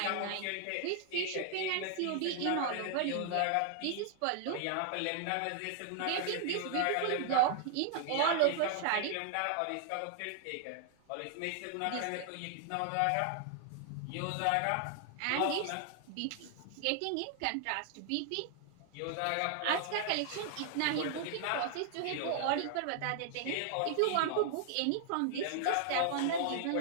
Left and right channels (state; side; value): different; both; correlation 0.00